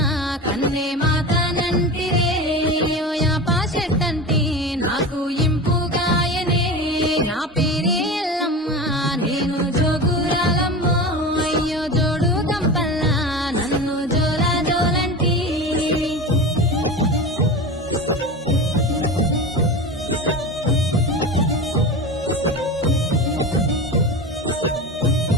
కన్నే మాతనంటిరే యాప చెట్టంటే నాకు ఇంపుగాయనే నా పేరే ఎల్లమ్మ నేను జోగురాలమ్మో అయ్యో జోడు గంపల్లా నన్ను జోలా జోలంటి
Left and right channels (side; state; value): both; normal; correlation 0.27